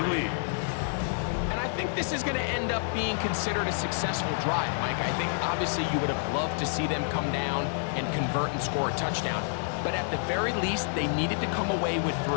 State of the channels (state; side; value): silent; right; digital silence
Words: lead. And I think this is going to end up being considered a successful drive, Mike. I think obviously you would have loved to see them come down and convert and score a touchdown. But at the very least, they needed to come away with